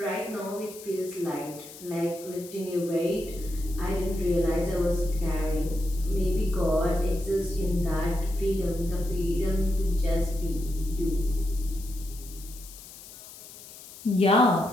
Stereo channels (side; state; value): left; noise; hiss, 17 dB below the sound